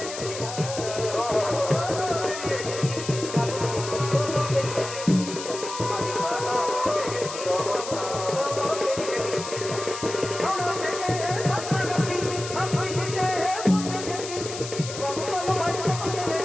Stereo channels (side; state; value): left; noise; hiss, 9 dB below the sound